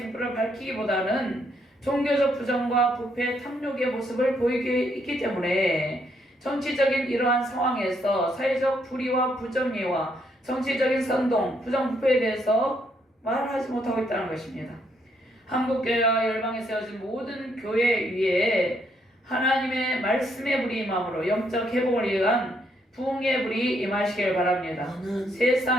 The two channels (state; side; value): normal; both; correlation 0.73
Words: 밝히기보다는 종교적 부정과 부패, 탐욕의 모습을 보이게 있기 때문에 정치적인 이러한 상황에서 사회적 불의와 부정의와 정치적인 선동, 부정부패에 대해서 말하지 못하고 있다는 것입니다. 한국교회와 열방에 세워진 모든 교회 위에 하나님의 말씀의 불이 임함으로 영적 회복을 위한 부흥의 불이 임하시길 바랍니다. 아멘.